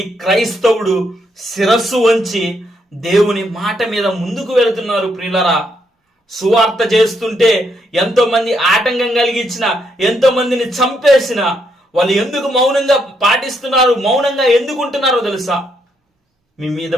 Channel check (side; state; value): both; normal; correlation 0.76